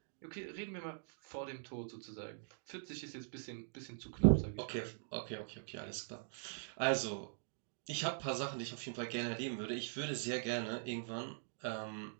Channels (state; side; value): silent; left; digital silence